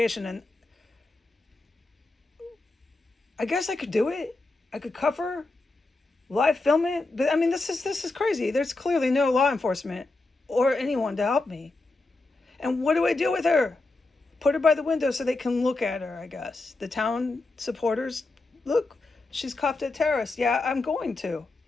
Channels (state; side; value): quieter; right; 3.2 dB